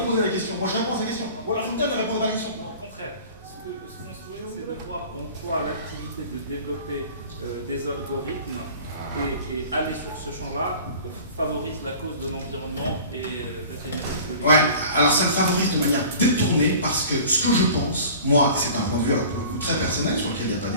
la question. Moi, je réponds à sa question. Ou alors, je vous donne de répondre à la question. Non, au contraire. Ce qu'on souhaite, c'est de voir en quoi l'activité de développer des algorithmes et aller sur ce champ-là favorise la cause de l'environnement et la Ouais, alors ça le favorise de manière détournée parce que ce que je pense, moi, c'est un point de vue pour le coup très personnel sur lequel il n'y a pas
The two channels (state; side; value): inverted; both; correlation -0.43